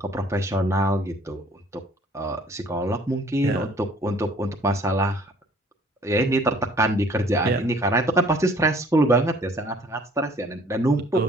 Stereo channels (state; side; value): normal; both; correlation 0.55